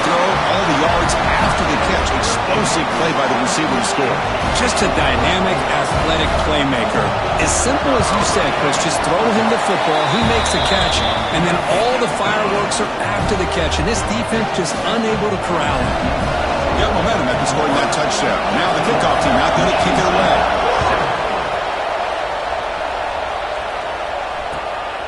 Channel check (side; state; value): both; identical; correlation 1.00